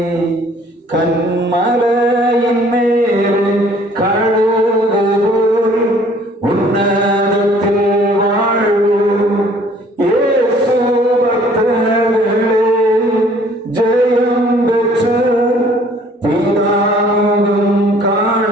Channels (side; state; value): both; normal; correlation 0.57